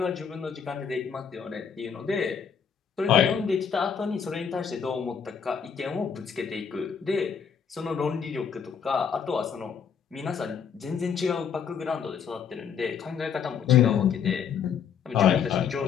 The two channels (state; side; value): quieter; right; 7.2 dB